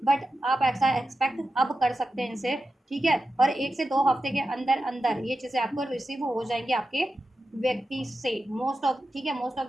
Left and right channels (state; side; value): normal; both; correlation 0.91